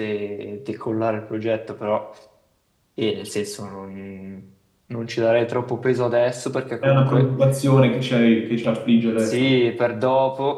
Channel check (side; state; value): both; identical; correlation 1.00